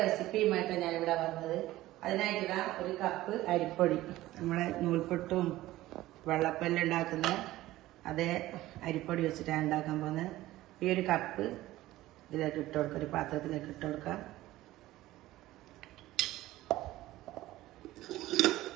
റെസിപ്പിയുമായിട്ടാണ് ഞാനിവിടെ വന്നത്. അതിനായിട്ട് ഒരു കപ്പ് അരിപ്പൊടി, നമ്മളെ നൂൽപുട്ടും വെള്ളപ്പെല്ലാം ഉണ്ടാക്കുന്ന അതേ അരിപ്പൊടി വെച്ചിട്ടാണ് ഉണ്ടാക്കാൻ പോകുന്നത്. ഈ ഒരു കപ്പ് ഇതിലേക്ക് ഇട്ട് കൊടുക്കുക, ഒരു പാത്രത്തിലേക്ക് ഇട്ട് കൊടുക്കുക.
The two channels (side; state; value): left; quieter; 16.3 dB